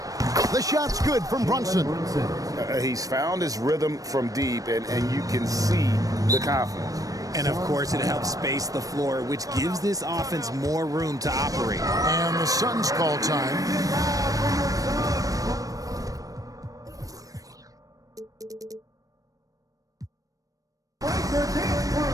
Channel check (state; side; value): late; left; 0.17 ms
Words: The shot's good from Brunson. He's found his rhythm from deep, and you can see the confidence. And, of course, it helps space the floor, which gives this offense more room to operate. And the Suns call time.